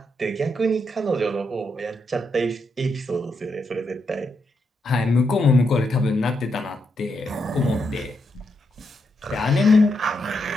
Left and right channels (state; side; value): normal; both; correlation 0.81